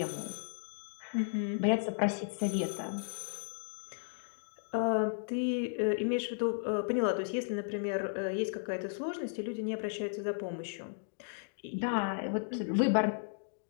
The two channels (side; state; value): right; silent; digital silence